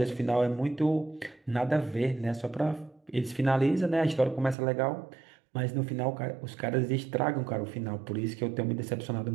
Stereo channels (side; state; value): left; drops out; at 4.5 s